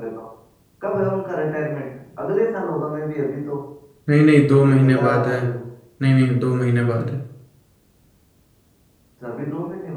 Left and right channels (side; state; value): both; identical; correlation 1.00